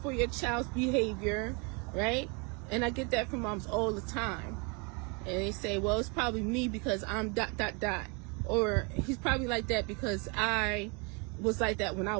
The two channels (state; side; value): quieter; left; 32.6 dB